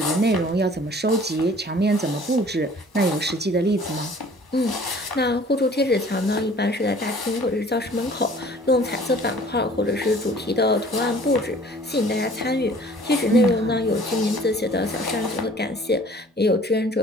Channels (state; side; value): normal; both; correlation 0.51